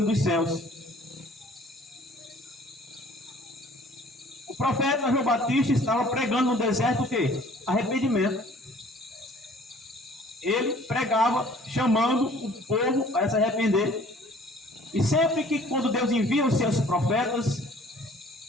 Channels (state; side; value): normal; both; correlation 0.53